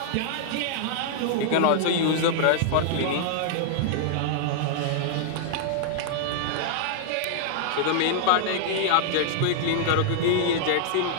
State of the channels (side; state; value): both; different; correlation -0.01